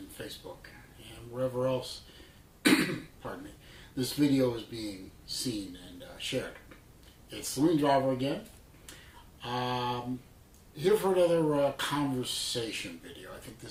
Facebook and wherever else, pardon me, this video is being seen and shared. It's Saloon Driver again, here for another conversation video. I think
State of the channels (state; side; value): identical; both; correlation 1.00